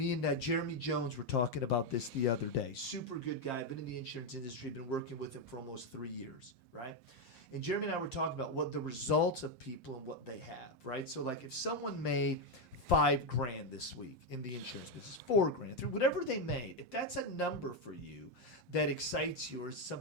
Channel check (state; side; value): late; right; 5.7 ms